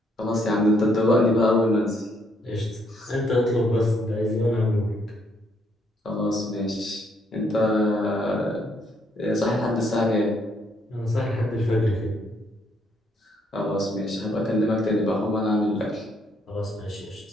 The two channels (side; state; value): both; normal; correlation 0.71